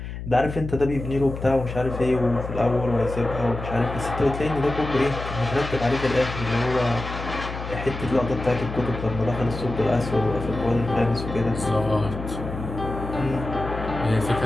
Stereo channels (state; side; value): noise; left; hum, 8 dB below the sound